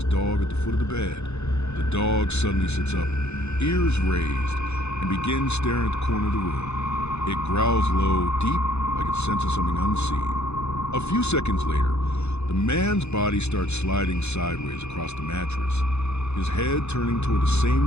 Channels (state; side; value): late; right; 0.81 ms